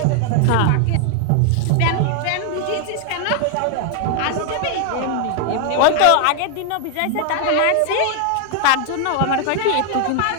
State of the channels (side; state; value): both; different; correlation 0.00